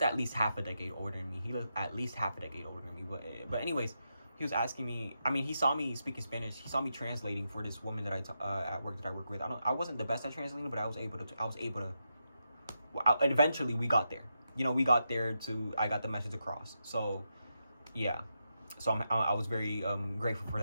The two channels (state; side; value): inverted; both; correlation -0.86